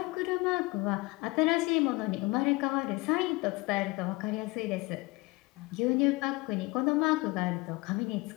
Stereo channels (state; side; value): quieter; right; 23.7 dB